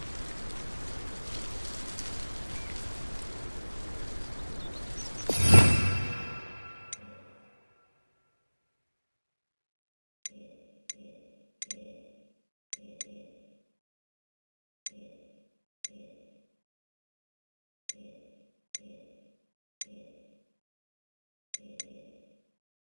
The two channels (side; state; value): both; inverted; correlation -1.00